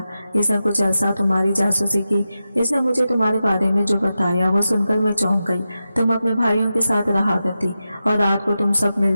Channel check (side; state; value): both; inverted; correlation -0.91